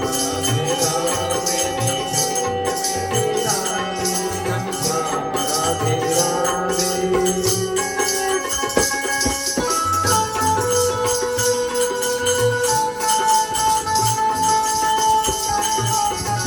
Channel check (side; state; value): both; identical; correlation 1.00